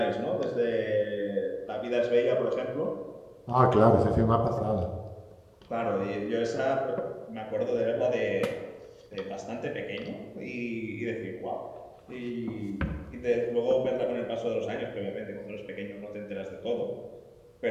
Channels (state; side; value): identical; both; correlation 1.00